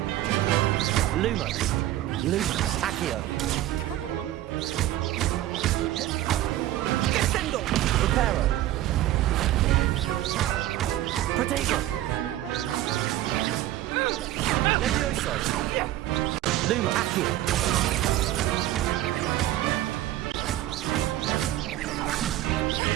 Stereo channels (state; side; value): quieter; left; 14.3 dB